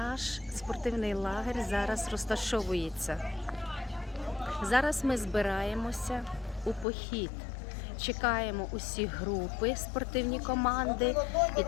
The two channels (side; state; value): right; drops out; at 6.9 s